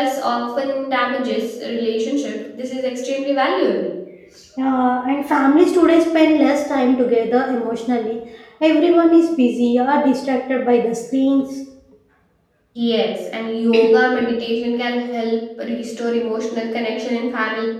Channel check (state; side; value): identical; both; correlation 1.00